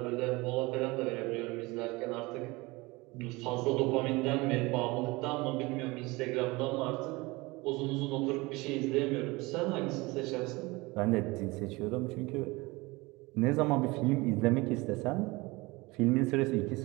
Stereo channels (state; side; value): quieter; left; 23.2 dB